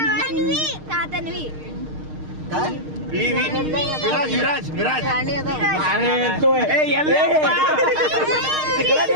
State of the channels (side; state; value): left; late; 6.5 ms